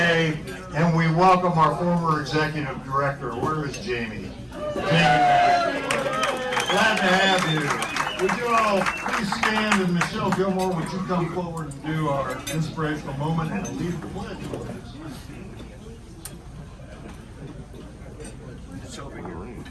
and we welcome our former executive director. Where is Jamie? Glad to have you. Would you all please stand, and Michelle Gilmore, would you come forward and do our inspirational moment and lead the pledge, please?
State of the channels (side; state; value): both; identical; correlation 1.00